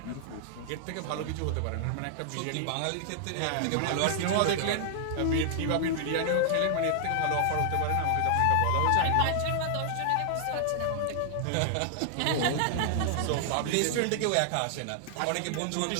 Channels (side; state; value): both; different; correlation 0.00